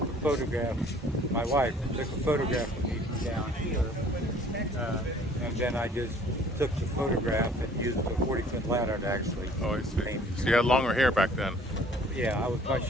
a photograph. My wife took a photograph of me from down here, and then I just took the photograph and used a 40-foot ladder to actually paint it. So you had longer hair back then? Yeah, I was much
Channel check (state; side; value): normal; both; correlation 0.54